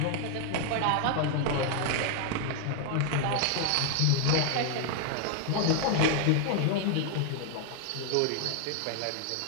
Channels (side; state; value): both; different; correlation 0.00